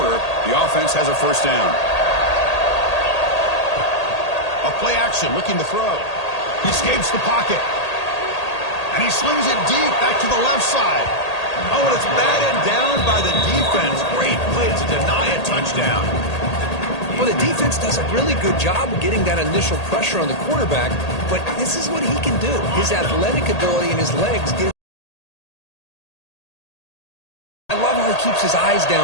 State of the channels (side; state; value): right; late; 1.8 ms